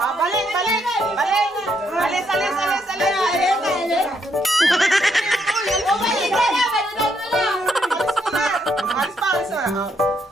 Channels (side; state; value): both; normal; correlation 0.74